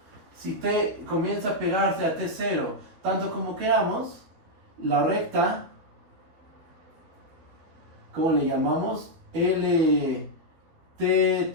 si T comienza a pegarse a T0 tanto como queramos, la recta, ¿cómo le llamamos?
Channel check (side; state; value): left; late; 12 ms